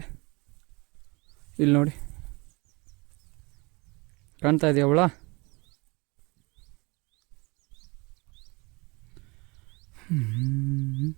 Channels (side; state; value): left; quieter; 26.9 dB